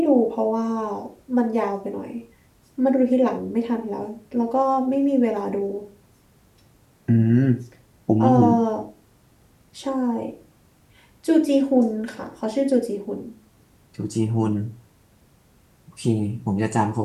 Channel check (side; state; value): both; identical; correlation 1.00